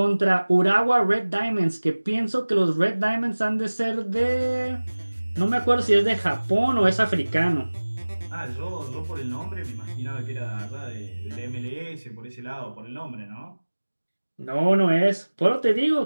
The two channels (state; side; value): inverted; both; correlation -1.00